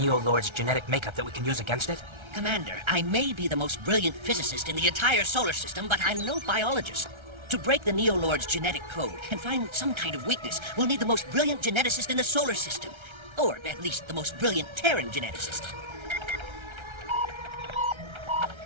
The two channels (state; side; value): late; left; 1.3 ms